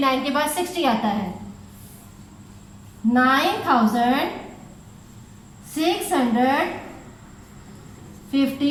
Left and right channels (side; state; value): both; identical; correlation 1.00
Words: के बाद 60 आता है।